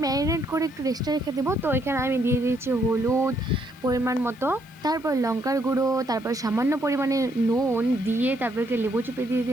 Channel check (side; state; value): left; noise; hiss, 28 dB below the sound